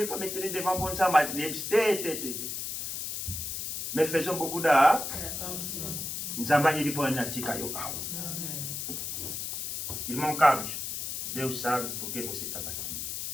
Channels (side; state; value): left; noise; hiss, 4 dB below the sound